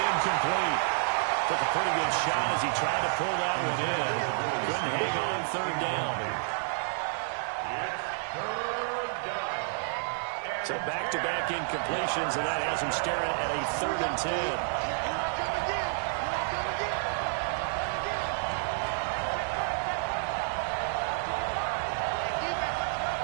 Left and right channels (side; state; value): left; silent; digital silence